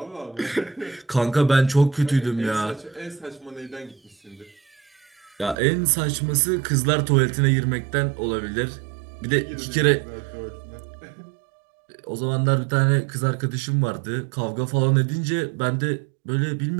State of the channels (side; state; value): left; drops out; at 5.6 s